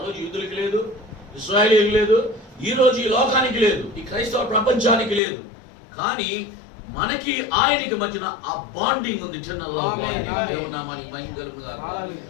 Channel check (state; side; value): drops out; right; at 5.2 s